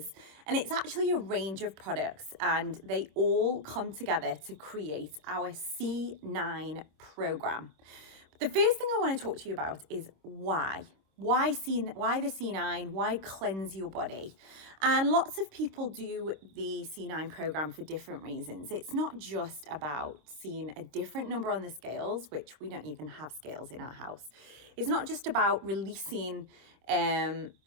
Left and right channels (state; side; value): late; left; 26 ms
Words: And it's actually a range of products, and they all come together to create our C9 program. The first thing I want to talk to you about is why. Why the C9? Why cleanse your body? And lots of people do the C9 program for different reasons. It's not just about seeing a different number on the scales, which we don't even have scales in our house. It's not just about releasing